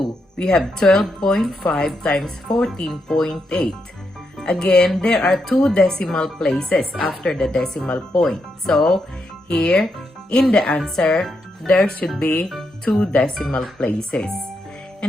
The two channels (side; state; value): both; normal; correlation 0.82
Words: we have 12.5 times 14.8. Again, there are 2 decimal places after the decimal point. So, here, in the answer, there should be 2 decimal places.